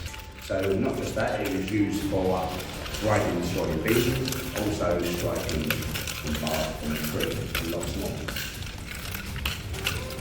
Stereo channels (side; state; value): both; identical; correlation 1.00